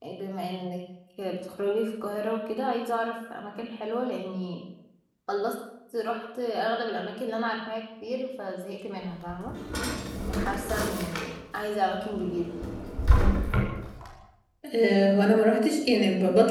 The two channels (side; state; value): both; identical; correlation 1.00